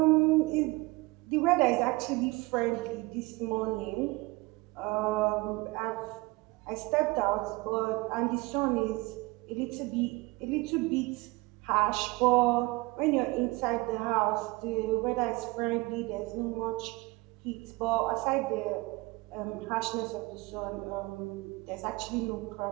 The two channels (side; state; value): left; quieter; 23.4 dB